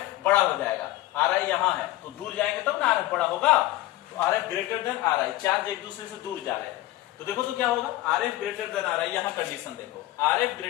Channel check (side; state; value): right; quieter; 16.3 dB